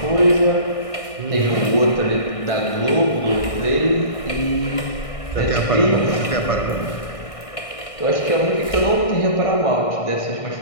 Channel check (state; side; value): late; right; 1.6 ms